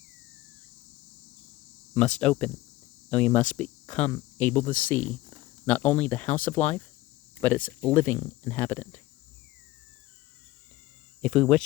must open, and we must become able to see not only the house of life, but its living inhabitant. If we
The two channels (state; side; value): quieter; right; 17.8 dB